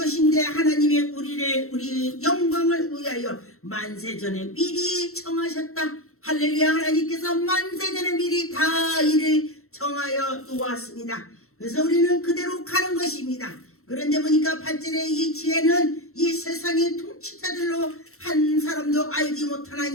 하나님이 우리 영광을 위하여 만세전에 미리 정하셨다. 할렐루야. 하나님께서 만세전에 미리 다 이를 정하여 놓았습니다. 그래서 우리는 그대로 가는 것입니다. 그런데 보니까 8절에 이 지혜는 이 세상의 통치자들로 한 사람도 알지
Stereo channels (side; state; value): right; late; 0.63 ms